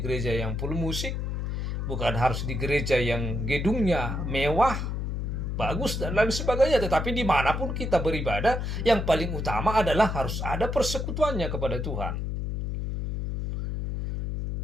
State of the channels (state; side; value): noise; left; hum, 2 dB below the sound